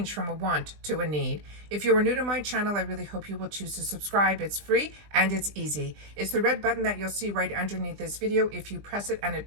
from a want to a need. If you are new to my channel, I really hope you will choose to subscribe. It's free and it's easy. It's the red button that you'll see right underneath this video. If you press it and it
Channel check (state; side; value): late; left; 20 ms